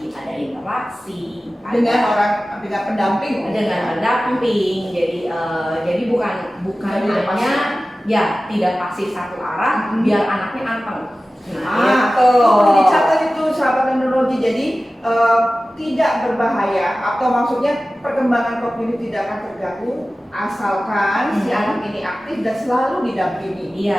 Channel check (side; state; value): both; normal; correlation 0.96